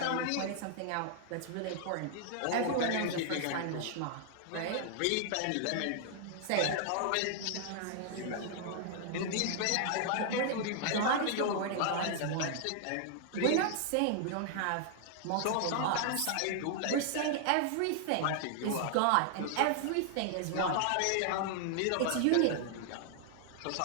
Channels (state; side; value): different; both; correlation 0.00